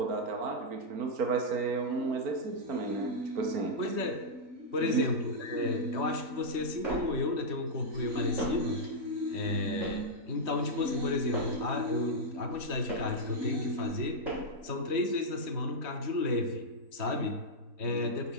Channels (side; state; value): left; late; 3.2 ms